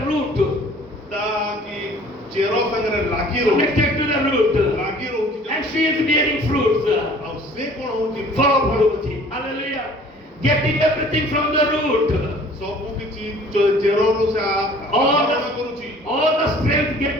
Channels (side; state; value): both; normal; correlation 0.51